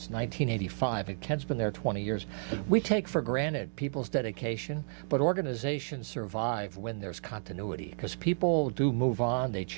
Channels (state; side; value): silent; left; digital silence